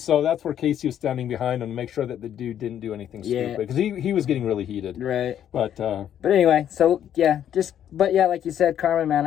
that's where Casey was standing behind him to make sure that the dude didn't do anything stupid, because he was getting really heated. Right. But anyway, so yeah, like you said, Carmen, man,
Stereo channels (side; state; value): right; quieter; 10.1 dB